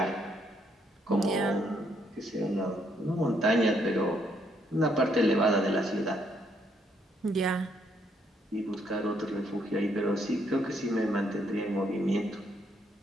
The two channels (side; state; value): both; normal; correlation 0.72